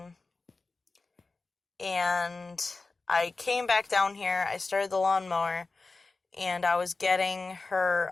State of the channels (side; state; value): right; quieter; 3.7 dB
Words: And I came back down here, I started the lawnmower, and I was getting her